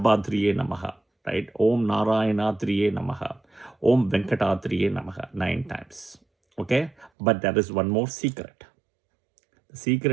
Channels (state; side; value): drops out; left; at 7.1 s